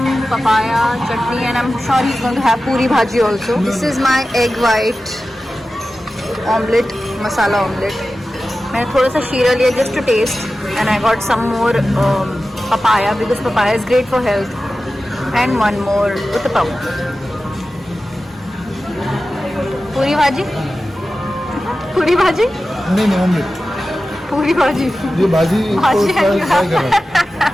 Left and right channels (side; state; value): both; normal; correlation 0.94